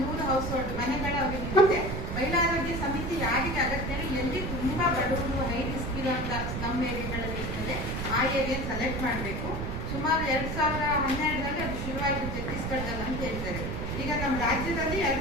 ಹೌಸ್ ಹೋಲ್ಡ್ ಮನೆಗಳ ಅವರಿಗೆ ಮಹಿಳಾ ಆರೋಗ್ಯ ಸಮಿತಿ ಯಾರಿಗೆ ಅಗತ್ಯ, ಎಲ್ಲಿ ತುಂಬಾ ಬಡವರು ಹೈ ರಿಸ್ಕ್ ಇರುವಂತ ಸ್ಲಮ್ ಏರಿಯಾಗಳಲ್ಲಿ ಇರ್ತದೆ ಆ ಏರಿಯಾ ಸೆಲೆಕ್ಟ್ ಮಾಡಬೇಕು. ಸುಮಾರು 2012ರಲ್ಲಿ ಅದು ಶುರುವಾಯಿತು ಛತ್ತೀಸ್ಗಢದಲ್ಲಿ ಅಂತ ಹೇಳ್ತಾರೆ. ಈಗ ನಮ್ಮ ರಾಜ್ಯದಲ್ಲಿ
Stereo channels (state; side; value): noise; right; rumble, 4 dB below the sound